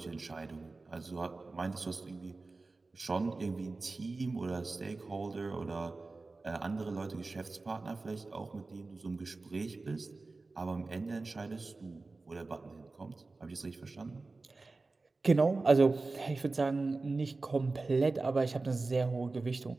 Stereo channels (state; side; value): quieter; left; 3.6 dB